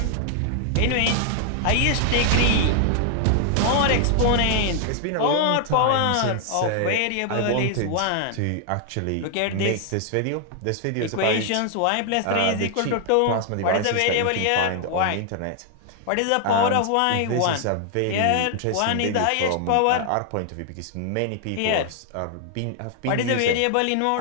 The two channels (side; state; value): both; different; correlation 0.00